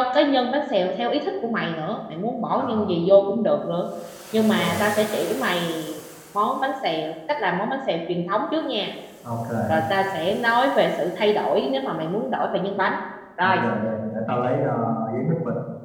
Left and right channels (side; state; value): both; identical; correlation 1.00